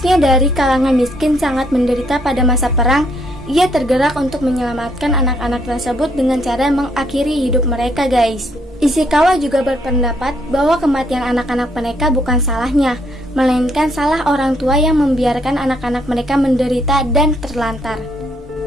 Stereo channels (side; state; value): both; normal; correlation 0.71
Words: dari kalangan miskin, sangat menderita pada masa perang, ia tergerak untuk menyelamatkan anak-anak tersebut dengan cara mengakhiri hidup mereka guys. Ishikawa juga berpendapat bahwa kematian anak-anak mereka bukan salahnya, melainkan salah orang tua yang membiarkan anak-anak mereka menderita dan terlantar.